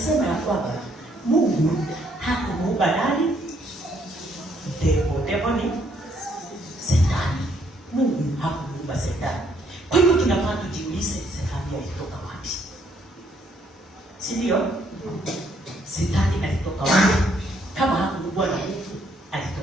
ya kwamba Mungu hakumuumba nani? Devil ni Shetani. Mungu hakumuumba Shetani. Kwa hivyo tunafaa tujiulize, Shetani alitoka wapi? Si ndio? Shetani alitoka wapi? Kama hakuumbwa na Mungu,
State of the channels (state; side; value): normal; both; correlation 0.69